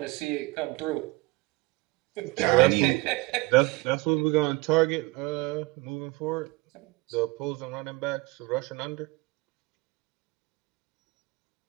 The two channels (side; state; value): left; quieter; 23.3 dB